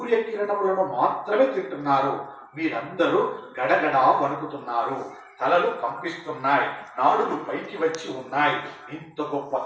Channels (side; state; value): both; identical; correlation 1.00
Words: మాత్రమే తింటున్నారు. వీరందరూ గడగడా వణుకుతున్నారు, తలలు కంపిస్తున్నాయి, నాడులు పైకి వచ్చి ఉన్నాయి. ఇంత గొప్ప